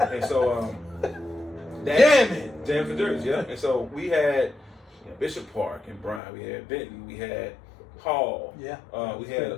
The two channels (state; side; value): drops out; right; at 6.2 s